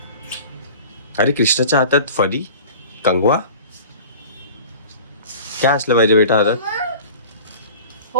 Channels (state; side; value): inverted; both; correlation -0.41